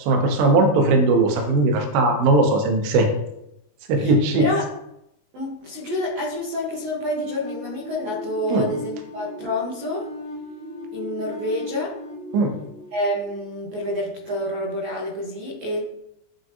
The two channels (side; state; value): left; late; 19 ms